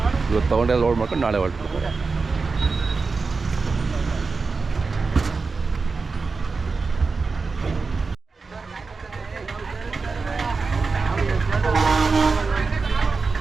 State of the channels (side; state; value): left; quieter; 4.4 dB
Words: ಇವತ್ತು ತೊಗೊಂಡೆಲ್ಲ ಲೋಡ್ ಮಾಡ್ಕೊಂಡು ನಾಳೆ ಹೊರಟಿರ್ತಾರೆ.